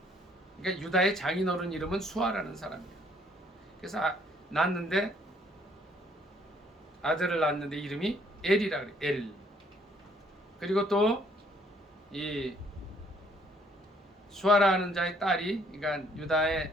그러니까 유다의 장인어른 이름은 수아라는 사람이에요. 그래서 아들을 낳았는데 이름이 엘이라 그래요. 엘. 그리고 또 이 수아라 하는 자의 딸이, 그러니까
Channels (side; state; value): both; normal; correlation 0.64